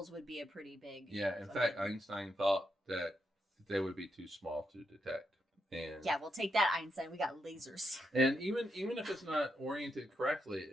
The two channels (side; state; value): both; normal; correlation 0.83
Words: would be a pretty big. Yeah, in fact, Einstein thought that they would be too small to detect. And Yeah, we'll take that, Einstein. We got lasers. and even if it's not oriented correctly,